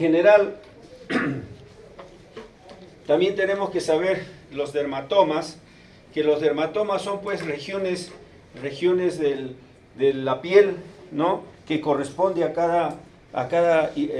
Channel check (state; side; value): identical; both; correlation 1.00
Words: también tenemos que saber los dermatomas, que los dermatomas son pues regiones de la piel, ¿no? Que corresponde a cada